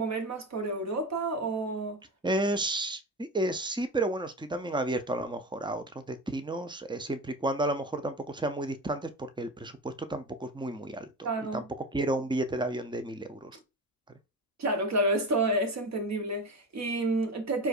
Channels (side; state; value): both; normal; correlation 0.27